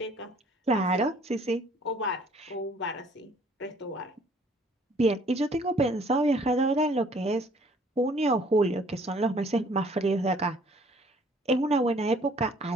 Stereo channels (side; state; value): both; normal; correlation 0.58